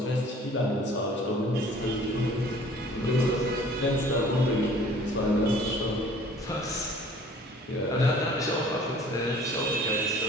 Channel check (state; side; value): normal; both; correlation 0.51